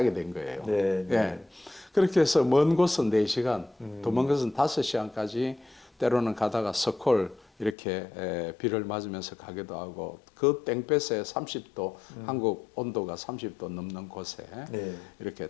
된 거예요. 네. 예. 그렇게 해서 먼 곳은 4시간, 더 먼 곳은 5시간까지 때로는 가다가 서콜 이렇게 비를 맞으면서 가기도 하고 그 땡볕에 30도 한국 온도가 30도 넘는 곳에 네. 이렇게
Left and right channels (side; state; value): right; drops out; at 7.8 s